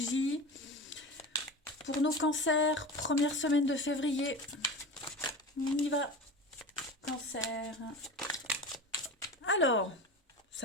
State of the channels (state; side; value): normal; both; correlation 0.30